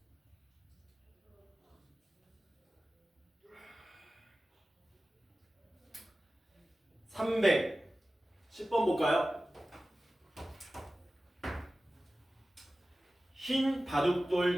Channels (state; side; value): normal; both; correlation 0.96